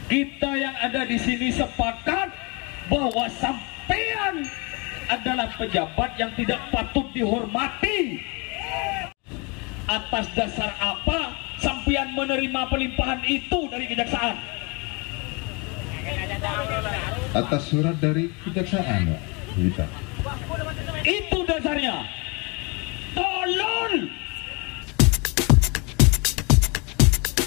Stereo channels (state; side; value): quieter; right; 30.1 dB